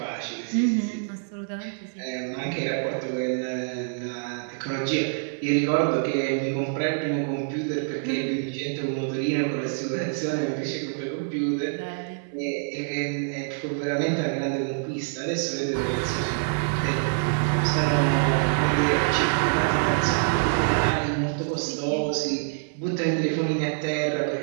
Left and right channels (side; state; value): left; silent; 61 dB below the other